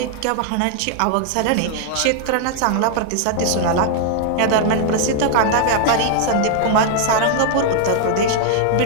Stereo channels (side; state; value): both; different; correlation 0.00